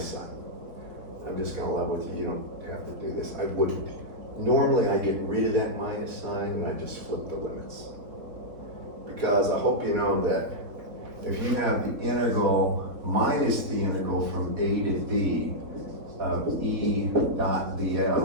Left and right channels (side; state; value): left; late; 3.7 ms